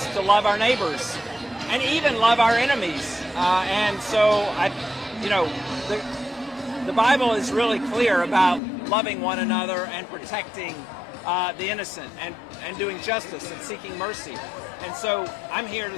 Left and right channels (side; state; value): right; drops out; at 8.6 s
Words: to love our neighbors and even love our enemies. And so, the Bible is really clear about loving one another and protecting the innocent and doing justice and seeking mercy. And so I'm here